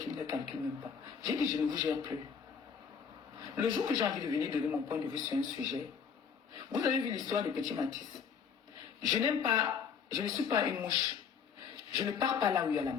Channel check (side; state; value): right; quieter; 6.7 dB